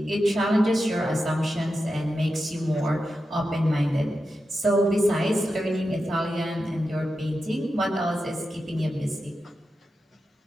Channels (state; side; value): normal; both; correlation 0.90